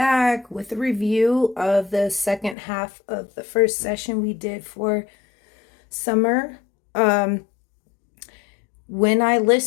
with a review of the second half of the first session we did for summer. Um, when I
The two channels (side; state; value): right; drops out; at 2.6 s